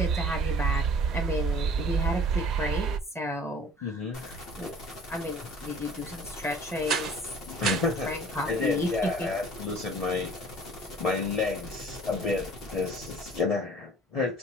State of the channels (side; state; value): both; normal; correlation 0.49